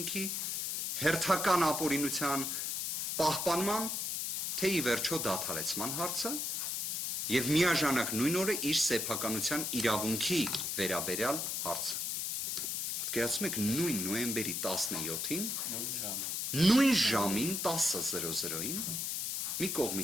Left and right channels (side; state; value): left; noise; hiss, 1 dB below the sound